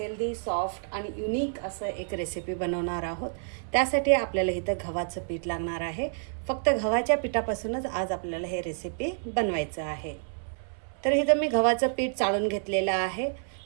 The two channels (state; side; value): silent; left; 59 dB below the other